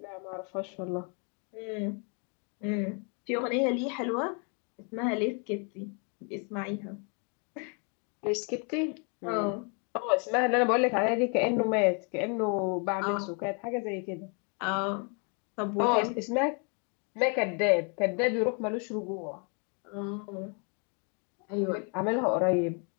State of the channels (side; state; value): right; quieter; 37.8 dB